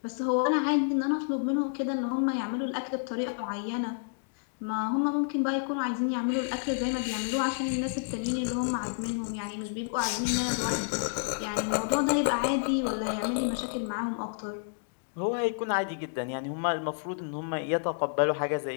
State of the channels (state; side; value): silent; right; digital silence